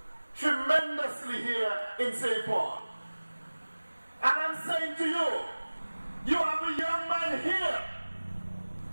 tremendously here in St. Paul. And I'm saying to you, you have a young man here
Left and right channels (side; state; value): both; inverted; correlation -1.00